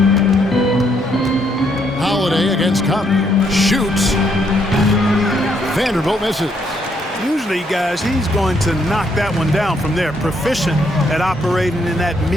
Holiday against Conley. Shoots. Vanderbilt misses. Usually, guys, he's going to knock that one down from there. Proficient at operating in that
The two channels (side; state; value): both; normal; correlation 0.72